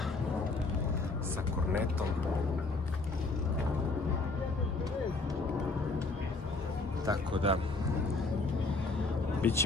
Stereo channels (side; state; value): right; quieter; 3.5 dB